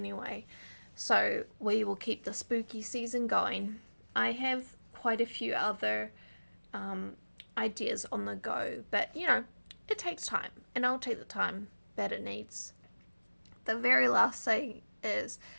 So we will keep the spooky season going. I have quite a few other ideas on the go, but you know, it takes time, and I'll take the time that it needs. The very last thing is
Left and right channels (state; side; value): inverted; both; correlation -1.00